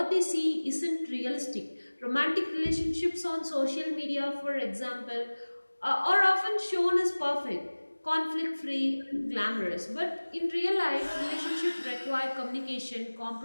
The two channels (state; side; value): inverted; both; correlation -1.00